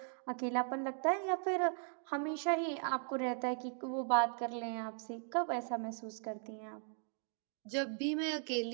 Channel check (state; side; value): silent; left; 52 dB below the other